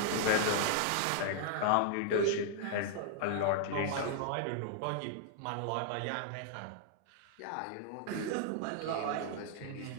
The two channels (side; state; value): both; different; correlation -0.01